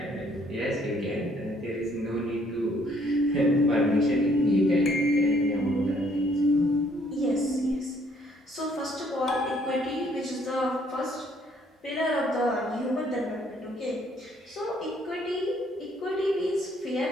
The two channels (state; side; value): normal; both; correlation 0.65